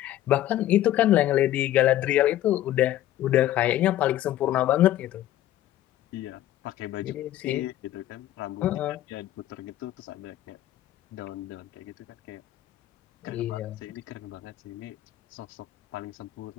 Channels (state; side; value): quieter; right; 13.5 dB